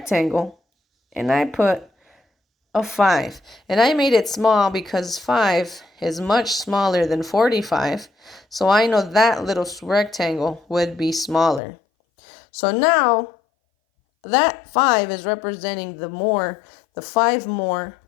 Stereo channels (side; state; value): right; drops out; at 11.6 s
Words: and I put a 5. And I made it small because 5 is much smaller than 45. So I know that little rectangle would be smaller. So now that 5 is representing the 5 more